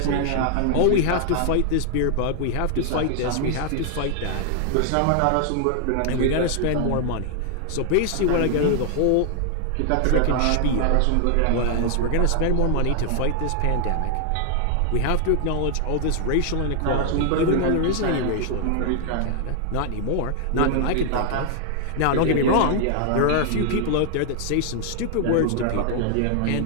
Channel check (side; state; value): both; different; correlation 0.00